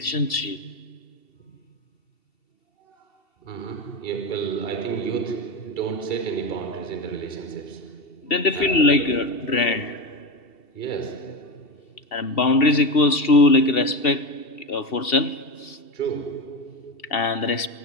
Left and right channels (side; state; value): right; late; 2.7 ms